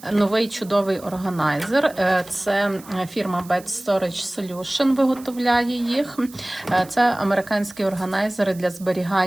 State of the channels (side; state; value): right; noise; hiss, 21 dB below the sound